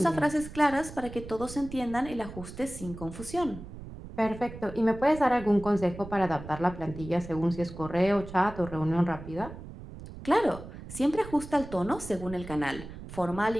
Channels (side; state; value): right; noise; rumble, 13 dB below the sound